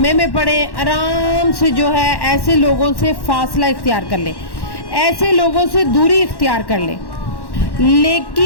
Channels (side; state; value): right; late; 1.1 ms